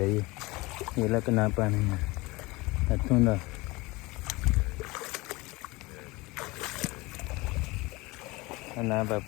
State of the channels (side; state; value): right; quieter; 22.9 dB